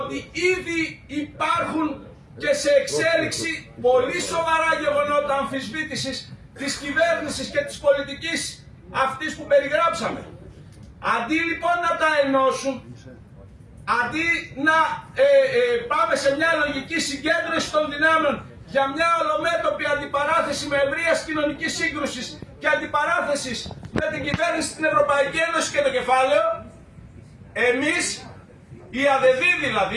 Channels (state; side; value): identical; both; correlation 1.00